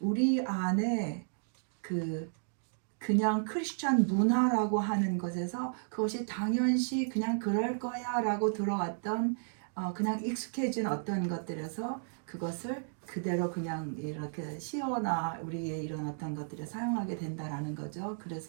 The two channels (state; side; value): silent; left; digital silence